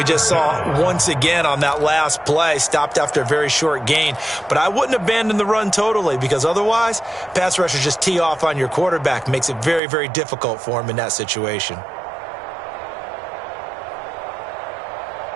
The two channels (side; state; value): left; drops out; at 9.8 s